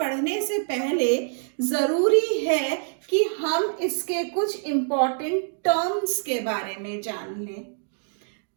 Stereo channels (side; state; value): left; silent; 61 dB below the other